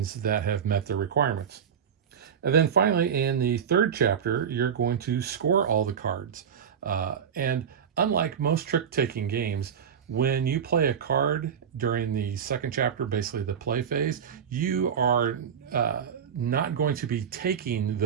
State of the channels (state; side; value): quieter; left; 7.6 dB